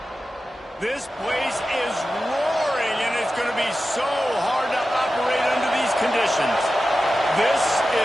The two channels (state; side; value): normal; both; correlation 0.93